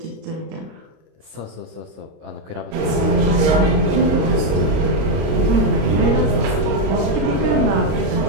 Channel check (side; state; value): left; late; 26 ms